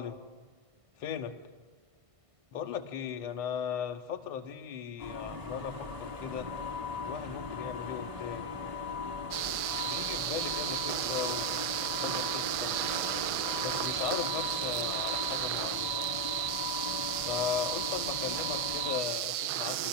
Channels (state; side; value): late; left; 1.5 ms